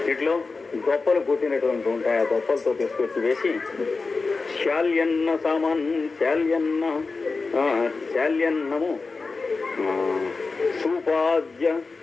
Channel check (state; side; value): quieter; right; 4.1 dB